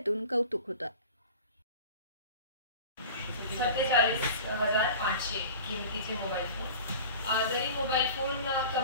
कौतुक होतं। 47,500 किमतीचे मोबाईल फोन, जरी मोबाईल फोन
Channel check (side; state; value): both; inverted; correlation -0.38